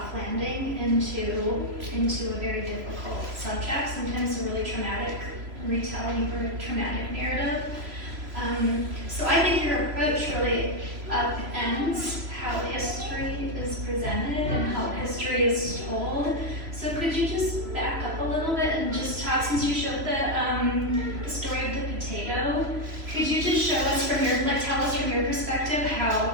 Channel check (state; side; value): late; left; 3.0 ms